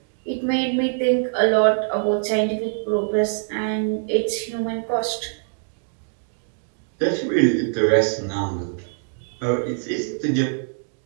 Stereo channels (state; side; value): silent; left; digital silence